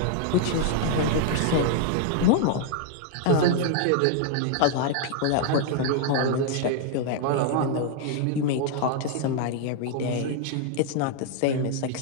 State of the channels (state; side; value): different; both; correlation 0.00